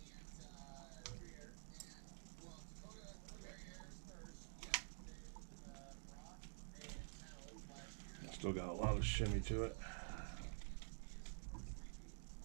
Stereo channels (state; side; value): silent; left; digital silence